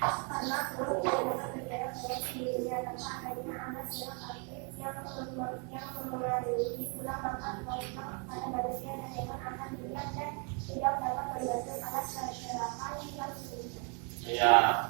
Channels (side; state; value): left; quieter; 36.0 dB